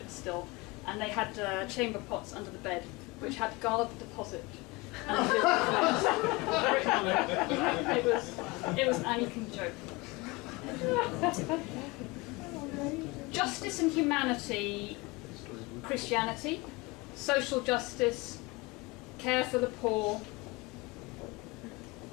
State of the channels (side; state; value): right; quieter; 24.1 dB